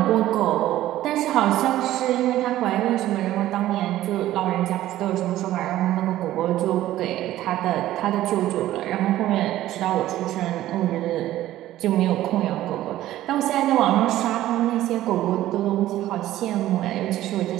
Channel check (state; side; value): quieter; left; 14.3 dB